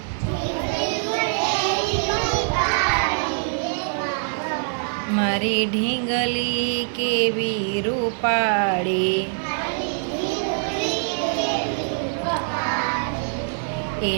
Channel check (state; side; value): silent; left; 63 dB below the other